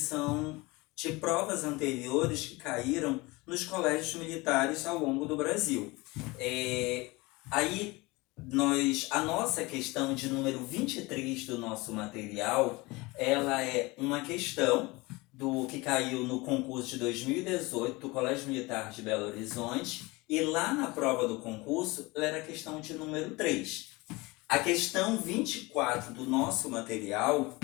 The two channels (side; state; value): right; quieter; 23.4 dB